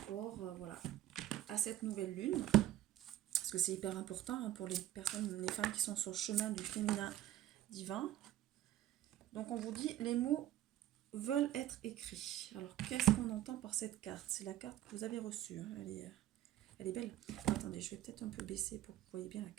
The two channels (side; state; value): left; quieter; 13.4 dB